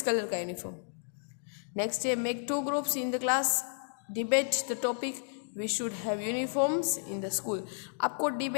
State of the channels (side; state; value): right; silent; digital silence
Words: कलर का यूनिफॉर्म। नेक्स्ट है make 2 groups in the class, debate the topic we should have uniforms in the school. आपको